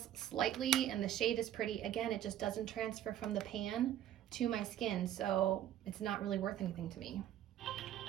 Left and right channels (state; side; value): quieter; left; 11.5 dB